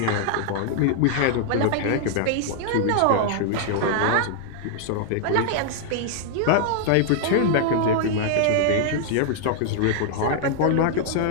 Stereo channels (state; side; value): different; both; correlation -0.01